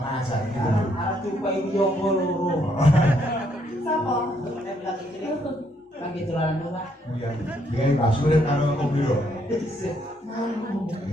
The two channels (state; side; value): normal; both; correlation 0.71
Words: aja gitu dulu. Arep jumpai yoga loro. Sapa? Nek bilang iki kangge dolanan rumah. Iya, dia Mbak Surip karo Om Biro.